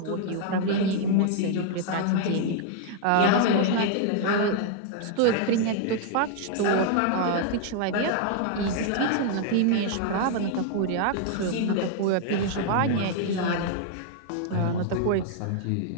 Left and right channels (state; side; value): different; both; correlation 0.00